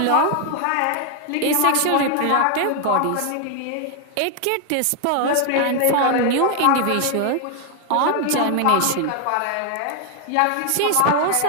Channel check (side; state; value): both; different; correlation 0.00